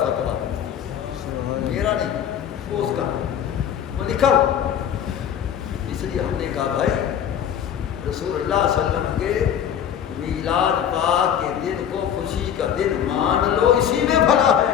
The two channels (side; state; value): right; quieter; 9.2 dB